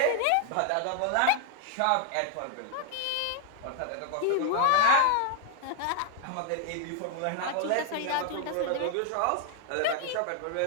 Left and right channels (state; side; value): different; both; correlation 0.00